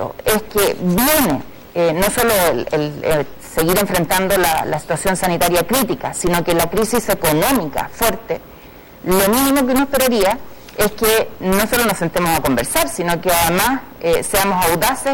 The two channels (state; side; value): identical; both; correlation 1.00